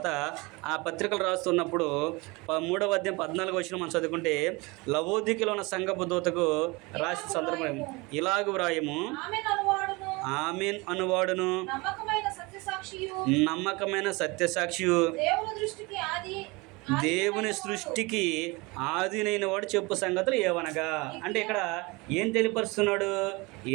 ఆ పత్రికలు రాస్తున్నప్పుడు 3వ అధ్యాయం 14 వచనం మనం చదువుకుంటే లవోదికలో ఉన్న సంఘపు దూతకు రాసిన సందర్భం ఇలాగ వ్రాయము, ఆమెన్ అనువాడును నమ్మకమైన సత్యసాక్షియు దేవుని సృష్టికి ఆదినైన వాడు చెప్పు సంగతులు ఏవనగా. అంటే ఇక్కడ ఏం తెలియపరుస్తున్నాడు?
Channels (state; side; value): quieter; left; 25.2 dB